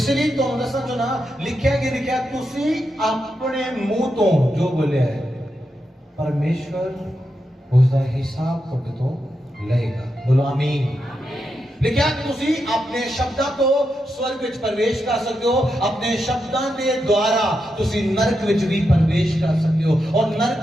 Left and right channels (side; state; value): both; normal; correlation 0.86